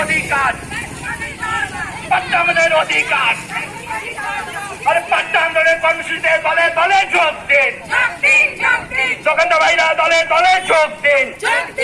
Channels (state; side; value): identical; both; correlation 1.00